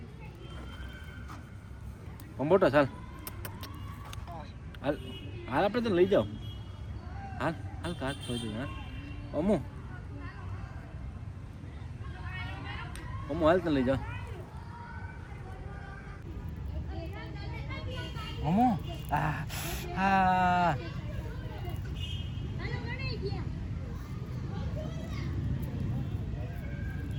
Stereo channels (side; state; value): both; identical; correlation 1.00